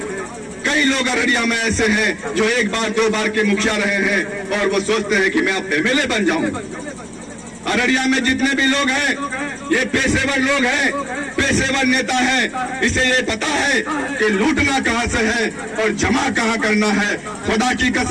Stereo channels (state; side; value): identical; both; correlation 1.00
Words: कई लोग अररिया में ऐसे हैं जो 1 बार 2 बार के मुखिया रहे हैं और वो सोचते हैं कि मैं अब एमएलए बन जाऊं। अररिया में जितने भी लोग हैं ये पेशेवर लोग हैं, पेशेवर नेता हैं। इसे ये पता है कि लूटना कहां से है और जमा कहां करना है। खुदा की